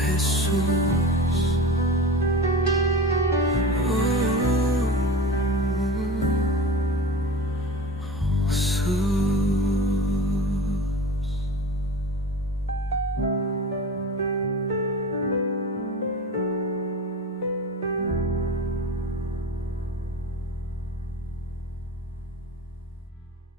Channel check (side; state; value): both; normal; correlation 0.33